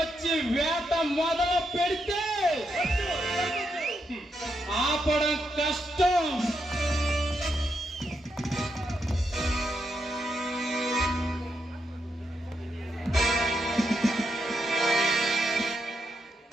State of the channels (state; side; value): normal; both; correlation 0.82